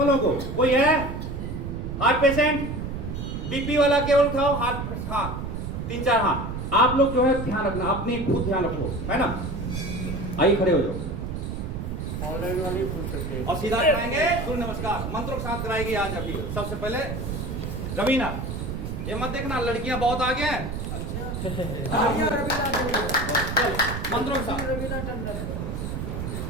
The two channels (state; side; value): noise; right; rumble, 5 dB below the sound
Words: को, कोई है हार्ट पेशेंट? बीपी वाला केवल उठाओ हाथ, हाँ 3-4 हाथ। आप लोग जो है ध्यान रखना, अपनी खुद ध्यान रखो, है ना। आइए खड़े हो जाओ। ऑनलाइन वाले पूछ सकते हैं। और सीधा कराएंगे सूर्य नमस्कार, मंत्रों के साथ कराएगी आज। अभी सबसे पहले रवीना, ये मत देखना लड़कियां बहुत आगे हैं। मंत्रों के साथ